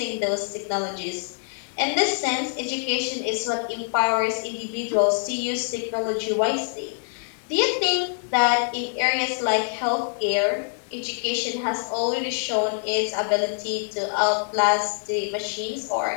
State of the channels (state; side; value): silent; right; digital silence